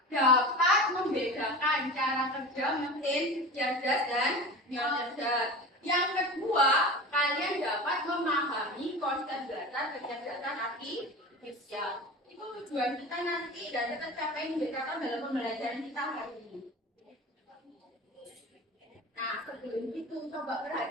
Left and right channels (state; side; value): normal; both; correlation 0.32